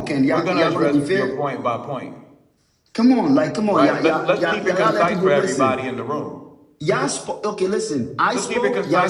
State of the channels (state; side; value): identical; both; correlation 1.00